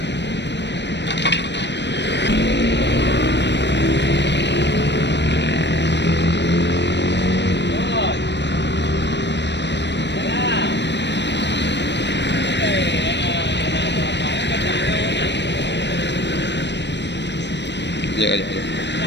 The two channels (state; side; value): late; right; 0.51 ms